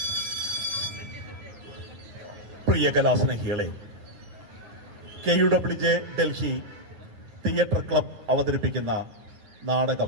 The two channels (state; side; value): late; left; 9.6 ms